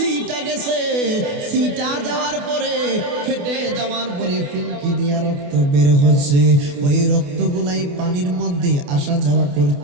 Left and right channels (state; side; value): late; left; 28 ms